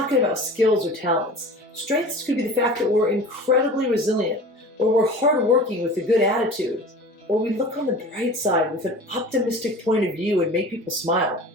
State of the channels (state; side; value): normal; both; correlation 0.39